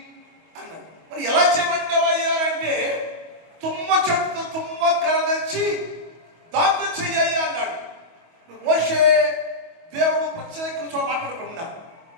అన్నాడు. మరి ఎలా చేయమంటావయ్యా అంటే తుమ్మ చెట్టు తుమ్మ కర్ర తెచ్చి దాంతో చెయ్యి అన్నాడు. మోషే దేవుడు ప్రత్యేక చోట మాట్లాడకుండా,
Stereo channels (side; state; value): left; late; 25 ms